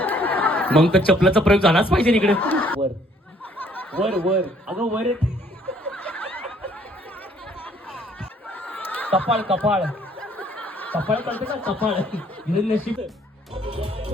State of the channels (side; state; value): both; normal; correlation 0.62